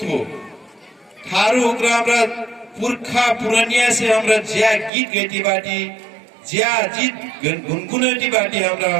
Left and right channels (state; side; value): drops out; left; at 4.9 s